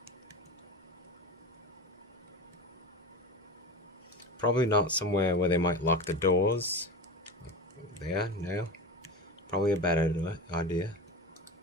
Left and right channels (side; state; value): both; normal; correlation 0.27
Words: Probably not somewhere where they might lock the doors. There, no. Probably a bad idea.